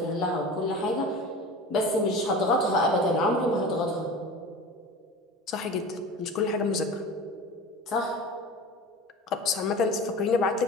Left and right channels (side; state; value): both; normal; correlation 0.34